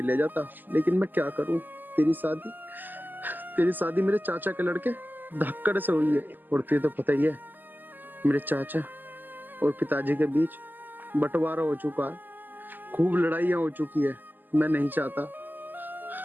ले जाता, लेकिन मैं क्या करूं? तेरी शादी मेरे चाचा के लड़के धक्कड़ से हुई है। और तुझे तो पता ही है, मेरे चाचा और पिताजी के बीच बंटवारा हो चुका है, खूब लड़ाइयां हो चुकी है। मैं नहीं चाहता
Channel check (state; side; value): late; left; 0.087 ms